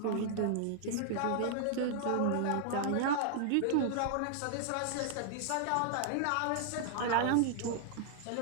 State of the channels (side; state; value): both; different; correlation 0.00